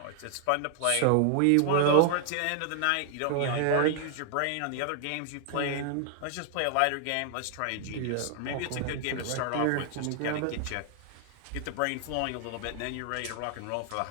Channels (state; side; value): different; both; correlation 0.00